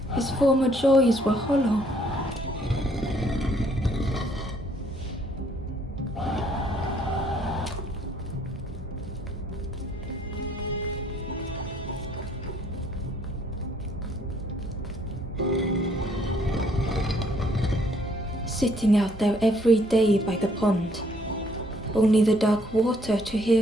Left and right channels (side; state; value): both; normal; correlation 0.65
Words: His former joys were hollow. Sitting out there every day by the pond, only the dark water to hear